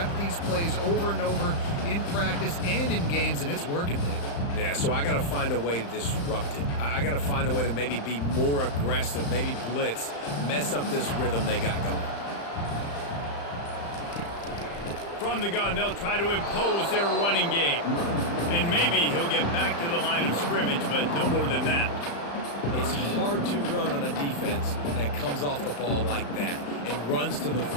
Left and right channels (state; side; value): late; right; 35 ms